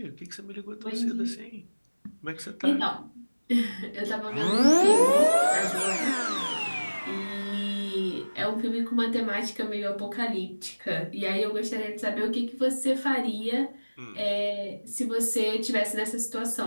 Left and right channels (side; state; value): both; inverted; correlation -1.00